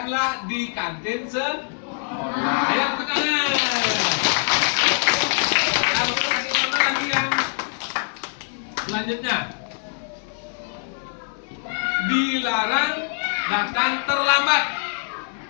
di kantin sekolah. Ayo, angkat tangan. Selanjutnya, dilarang datang terlambat.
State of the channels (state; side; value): silent; right; 63 dB below the other